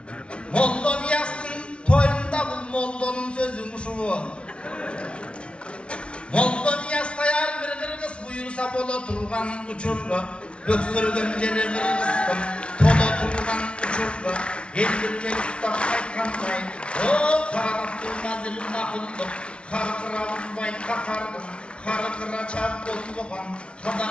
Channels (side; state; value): right; late; 0.059 ms